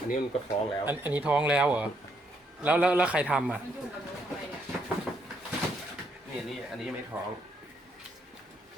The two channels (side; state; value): both; normal; correlation 0.74